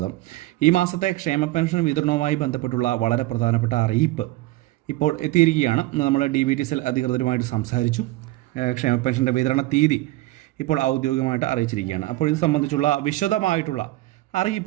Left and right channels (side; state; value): left; quieter; 18.1 dB